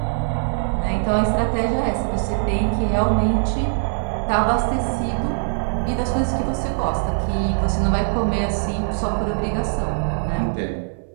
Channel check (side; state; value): left; silent; 64 dB below the other